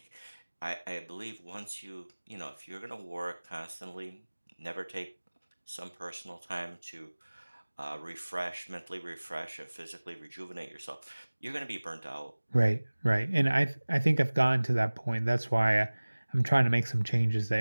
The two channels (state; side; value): inverted; both; correlation -1.00